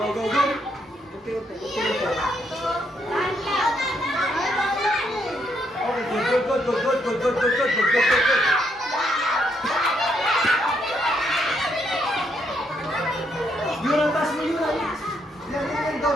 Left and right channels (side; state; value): both; normal; correlation 0.75